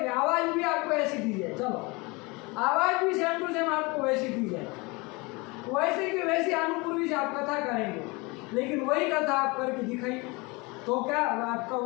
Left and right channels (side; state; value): right; quieter; 26.1 dB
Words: आवाज भी आपको ऐसी दी जाए, चलो आवाज भी सेम टू सेम आपको वैसी दी जाए, वैसे की वैसी अनुपूर्वी से आप कथा करेंगे, लेकिन वही कथा आप करके दिखाइए तो क्या आपका